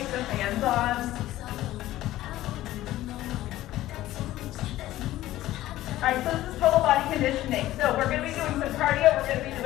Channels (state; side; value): quieter; right; 15.2 dB